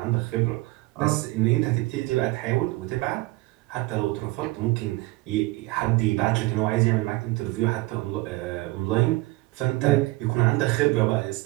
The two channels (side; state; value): left; quieter; 21.2 dB